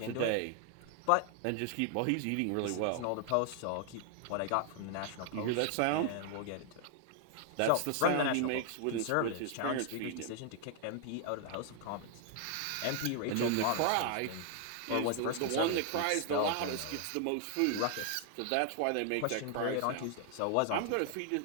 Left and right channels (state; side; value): different; both; correlation 0.00